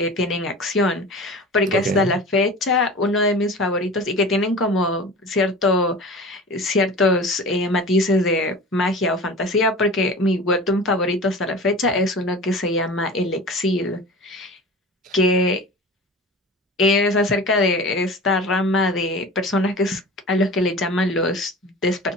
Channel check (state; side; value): normal; both; correlation 0.36